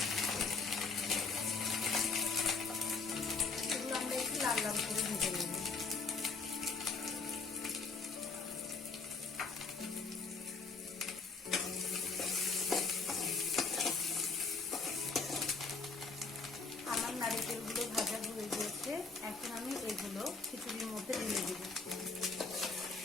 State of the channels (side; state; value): right; quieter; 4.4 dB